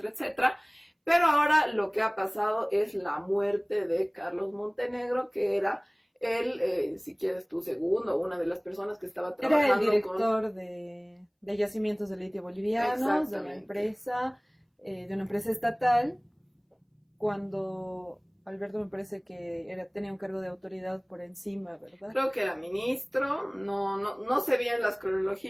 etcétera. Pero ahora lo que ha pasado es la muerte de Carlos Montenegro, que era él, si quieres tu segundo, una de las personas que estaba trabajando. Era el director de yacimientos de litio bolivianos, de una empresa estatal, cuando Alberto me parece que tenía un cargo de autoridad por encima, ¿verdad? Creo que era ministro, no sé bien las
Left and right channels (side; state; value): both; identical; correlation 1.00